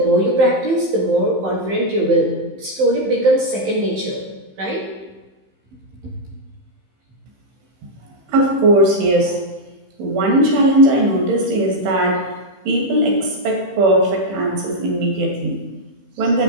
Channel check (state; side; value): late; left; 15 ms